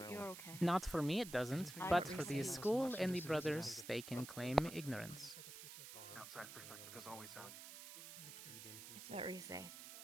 okay. Not for me, it doesn't, but for the school and the brothers, they can claim ignorance. Outside perspective is always valued. It's what we say.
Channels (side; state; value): right; noise; hiss, 11 dB below the sound